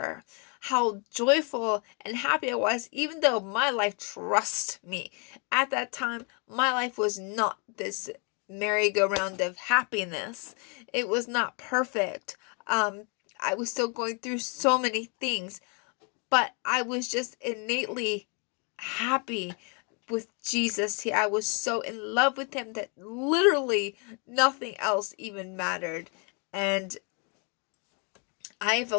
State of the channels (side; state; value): right; quieter; 35.8 dB